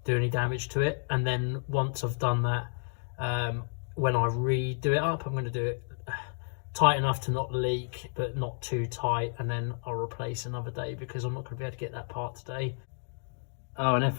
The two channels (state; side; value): silent; right; digital silence